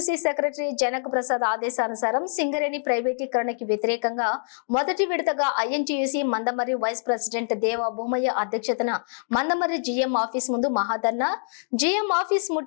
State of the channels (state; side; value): silent; right; digital silence